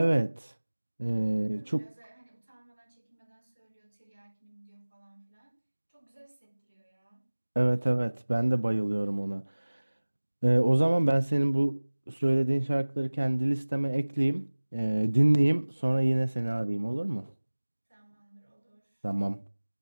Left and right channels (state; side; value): inverted; both; correlation -1.00